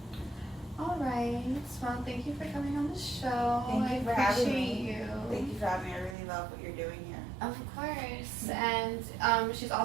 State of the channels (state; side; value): drops out; left; at 6.2 s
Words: All right. Well, thank you for coming on the show. Thank you for having me. You. Thank you for having me. I really love what you're doing here. Of course. And she's